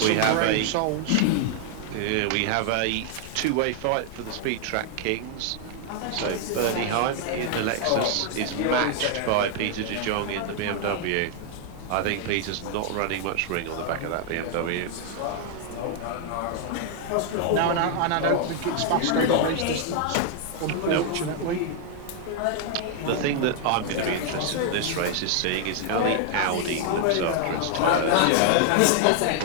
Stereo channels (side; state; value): both; different; correlation 0.00